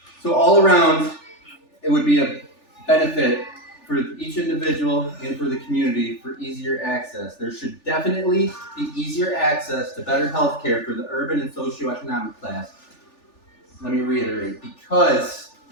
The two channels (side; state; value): right; late; 3.4 ms